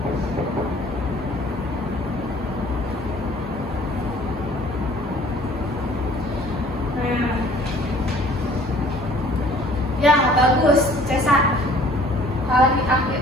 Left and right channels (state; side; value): normal; both; correlation 0.53